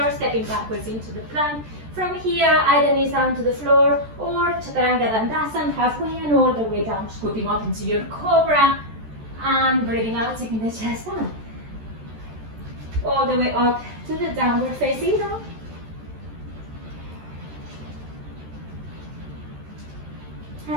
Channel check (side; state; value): left; late; 14 ms